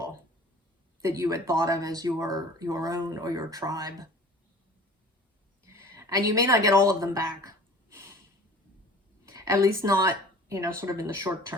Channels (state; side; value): normal; both; correlation 0.45